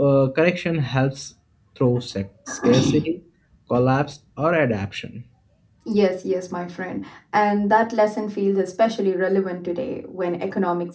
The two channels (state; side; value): identical; both; correlation 1.00